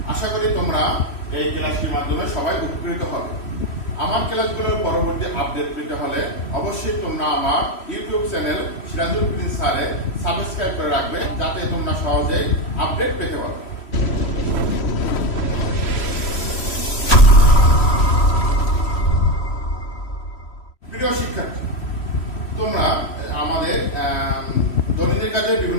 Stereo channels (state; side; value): late; right; 3.1 ms